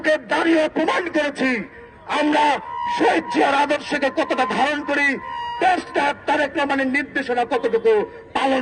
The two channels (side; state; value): both; identical; correlation 1.00